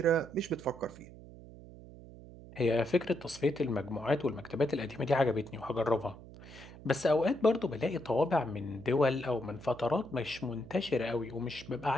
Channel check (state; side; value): noise; right; hum, 17 dB below the sound